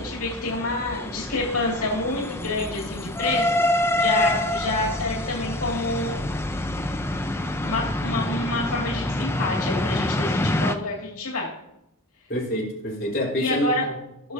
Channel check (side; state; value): both; normal; correlation 0.36